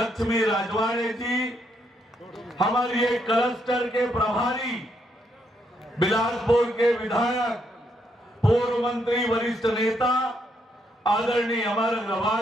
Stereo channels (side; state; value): both; normal; correlation 0.75